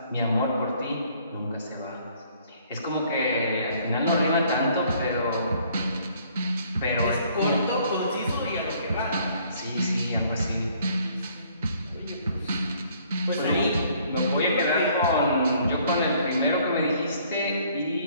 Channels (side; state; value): both; inverted; correlation -0.61